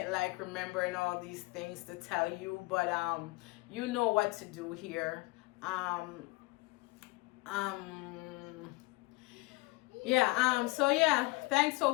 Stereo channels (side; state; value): right; quieter; 24.1 dB